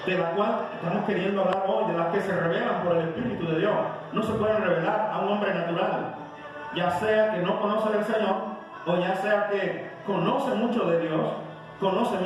de la cual estamos queriendo hablar hoy, de las que se revelan por el Espíritu de Dios. No se pueden revelar a un hombre natural, ya sea que no conoce del Señor, o ya sea que conoce mucho de Dios, conoce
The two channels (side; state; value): both; identical; correlation 1.00